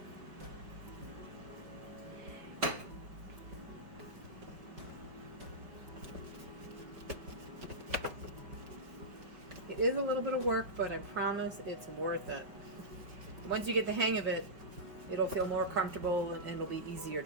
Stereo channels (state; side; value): late; left; 5.2 ms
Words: It is a little bit of work, but I promise it's worth it. Once you get the hang of it, it'll feel more comfortable and it'll be easier